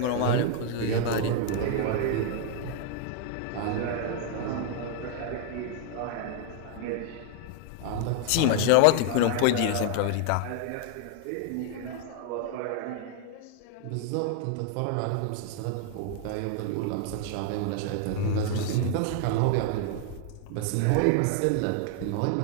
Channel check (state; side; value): different; both; correlation 0.00